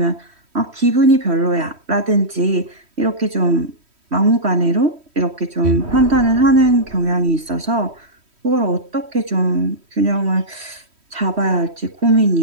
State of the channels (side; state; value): left; late; 3.1 ms